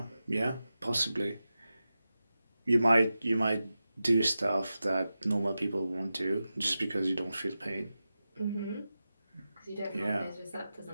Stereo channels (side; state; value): both; inverted; correlation -0.93